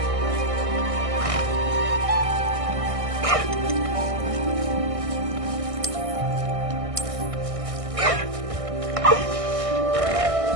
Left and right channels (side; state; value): left; late; 1.6 ms